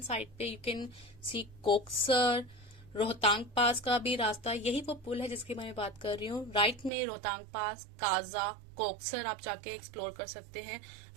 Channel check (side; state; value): left; drops out; at 6.9 s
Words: साइड पे you can see Koksar. Rohtang Pass का भी रास्ता, यही वो पुल है जिसकी मैं बात कर रही हूँ। राइट में रोहतांग पास, काजा, कोक्सर आप जाके एक्सप्लोर कर सकते हैं।